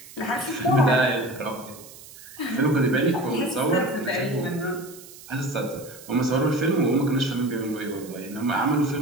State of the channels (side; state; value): right; noise; hiss, 18 dB below the sound